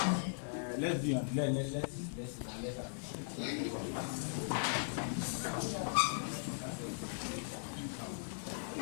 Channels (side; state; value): right; silent; 52 dB below the other